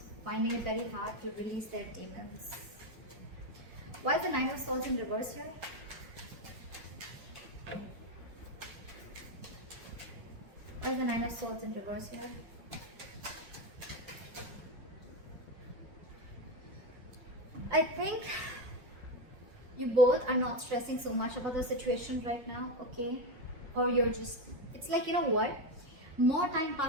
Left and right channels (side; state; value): left; late; 5.5 ms